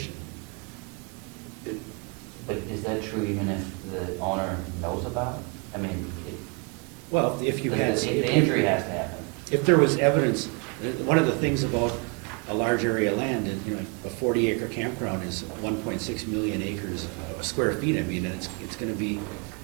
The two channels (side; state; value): left; quieter; 33.0 dB